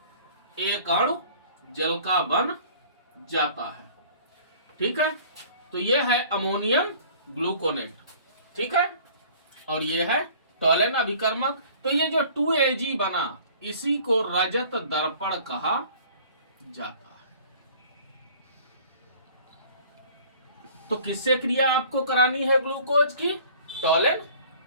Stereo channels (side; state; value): both; inverted; correlation -0.50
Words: एक अणु जल का बन जाता है, ठीक है। तो ये है अमोनियम ग्लूकोनेट, ठीक है। और ये है टॉलेन अभिकर्मक। तो ये जो 2Ag बना, इसी को रजत दर्पण कहा जाता है। तो किससे क्रिया आपको करानी है ग्लूकोज की? टॉलेन